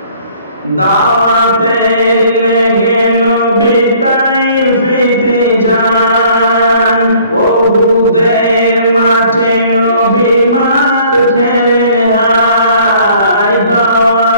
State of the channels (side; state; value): both; inverted; correlation -0.57